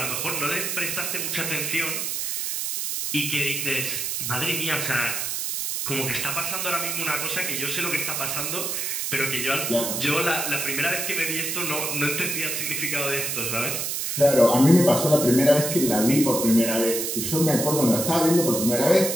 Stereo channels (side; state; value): right; noise; hiss, 2 dB below the sound